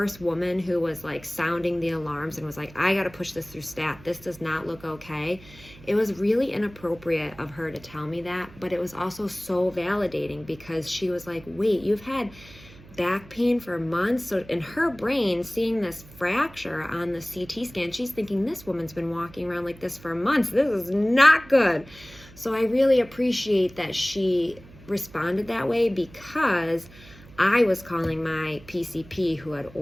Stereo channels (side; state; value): right; noise; hum, 21 dB below the sound